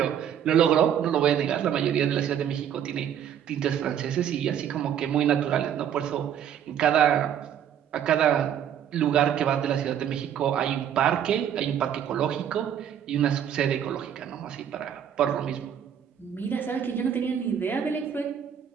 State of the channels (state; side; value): quieter; left; 9.3 dB